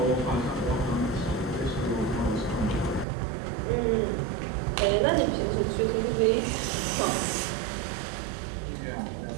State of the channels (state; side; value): drops out; left; at 3.1 s